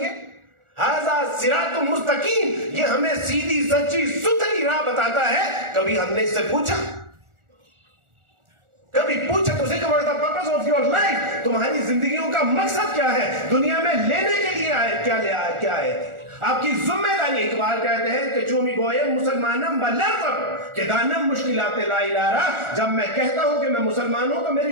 ھذا صراط مستقیم، یہ ہمیں سیدھی سچی ستھری راہ بتاتا ہے؟ کبھی ہم نے اس سے پوچھا تو سے کہ what is the purpose of your life, تمہاری زندگیوں کا مقصد کیا ہے؟ دنیا میں لینے کے لیے کیا آئے تھے؟ آپ کی ذمہ داری۔ اقبال کہتے ہیں کہ چومی گوئے مسلمانم بلرزم کہ دانم مشکلات لا الہ، جب میں کہتا ہوں کہ میں مسلمان ہوں تو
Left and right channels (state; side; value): late; left; 1.4 ms